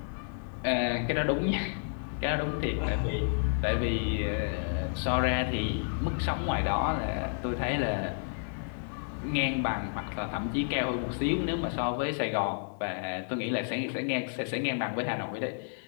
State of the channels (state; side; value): silent; right; digital silence